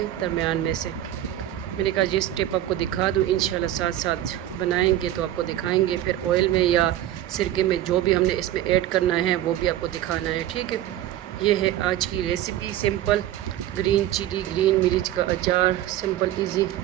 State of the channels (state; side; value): quieter; left; 12.9 dB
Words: दरमियान में से मैंने कहा ये स्टेप आपको दिखा दूँ, इंशाल्लाह साथ साथ बनाएंगे तो आपको दिखाएंगे। फिर ऑयल में या सिरके में जो भी हमने इसमें ऐड करना है वो भी आपको दिखाना है। ठीक है, ये है आज की recipe, simple green chilli green मिर्च का अचार। सिंपल इजी